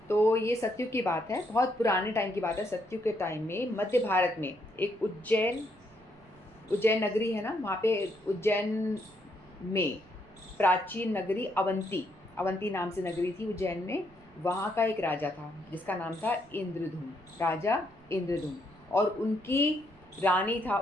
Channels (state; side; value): noise; right; rumble, 27 dB below the sound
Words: तो ये सतयुग की बात है, बहुत पुराने टाइम की बात है। सतयुग के टाइम में मध्य भारत में एक उज्जैन नगरी है ना, वहाँ पे उज्जैन में प्राचीन नगरी अवंती नाम से नगरी थी उज्जैन में। वहाँ का एक राजा था जिसका नाम था इंद्रधुम, राजा इंद्रधुम, और उनकी